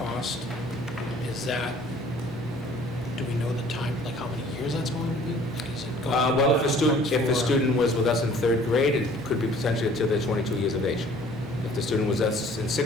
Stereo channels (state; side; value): normal; both; correlation 0.53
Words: do we know the time, like how many years that's going to be? Like, is it going to be Well, if a for- student was with us in third grade, it could be potentially until they're 22 years of age. If the student was with us in